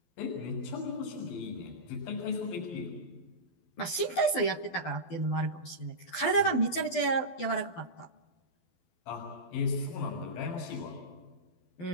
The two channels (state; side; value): late; right; 12 ms